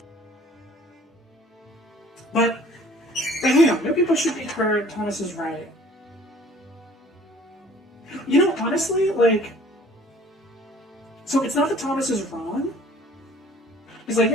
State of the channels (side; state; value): both; normal; correlation 0.53